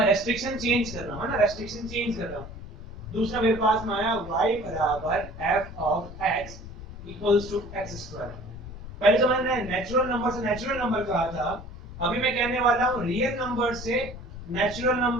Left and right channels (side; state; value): left; noise; rumble, 13 dB below the sound